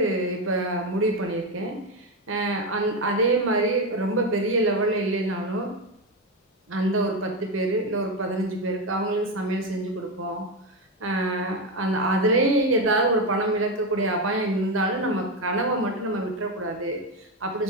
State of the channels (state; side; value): normal; both; correlation 0.12